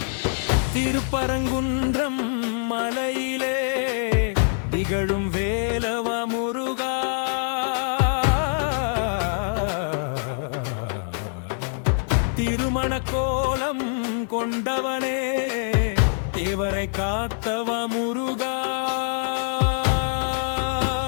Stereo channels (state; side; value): silent; right; 58 dB below the other